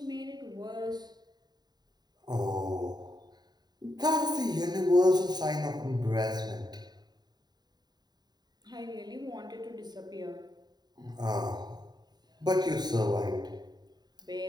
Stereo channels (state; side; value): late; left; 0.20 ms